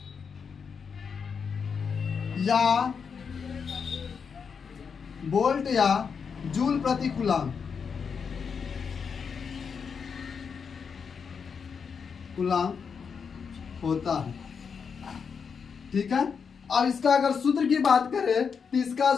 या जूल प्रति कूलाम होता है। ठीक है, अब इसका अगर सूत्र की बात करें तो इसका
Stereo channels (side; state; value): right; quieter; 6.2 dB